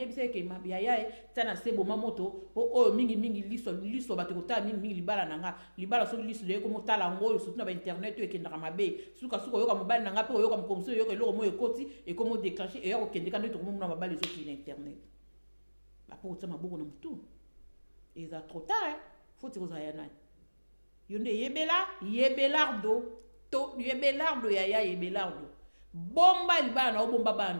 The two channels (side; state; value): both; inverted; correlation -1.00